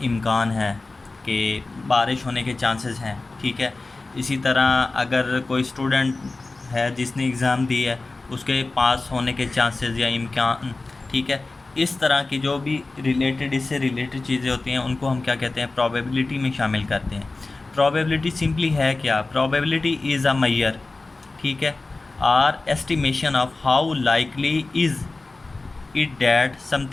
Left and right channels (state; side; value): quieter; right; 3.4 dB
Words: इम्कान है, कि बारिश होने के चांसेस हैं, ठीक है। इसी तरह अगर कोई स्टूडेंट है जिसने एग्ज़ाम दी है, उसके पास होने के चांसेस या इम्कान, ठीक है। इस तरह की जो भी रिलेटेड, इससे रिलेटेड चीज़ें होती हैं उनको हम क्या कहते हैं, प्रोबेबिलिटी में शामिल करते हैं। प्रोबेबिलिटी सिंपली है क्या, प्रोबेबिलिटी इज़ अ मेजर, ठीक है, or estimation of how likely is it that